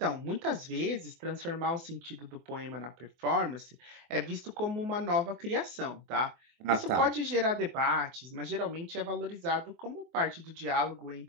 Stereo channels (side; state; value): left; late; 24 ms